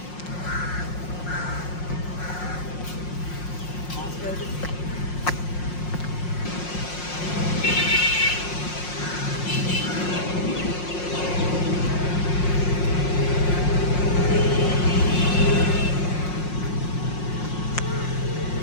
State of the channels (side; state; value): right; late; 5.6 ms